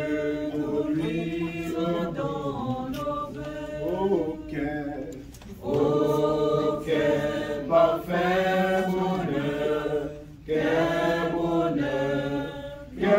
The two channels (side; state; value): both; identical; correlation 1.00